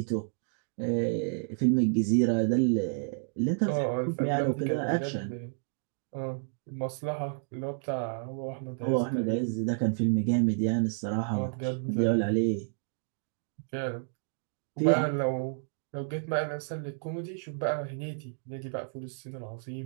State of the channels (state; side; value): silent; left; digital silence